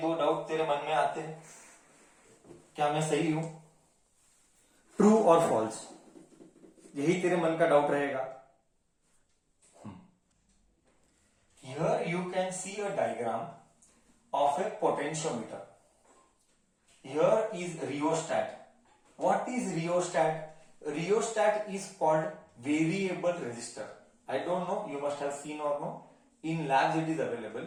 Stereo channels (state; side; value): identical; both; correlation 1.00